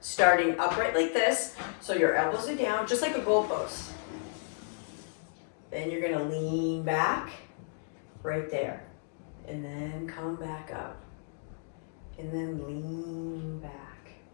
upright like this, so your elbows are down, just like a goalpost. Then you're gonna lean back, right there, and then come back up, and then lean back,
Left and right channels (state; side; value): silent; right; digital silence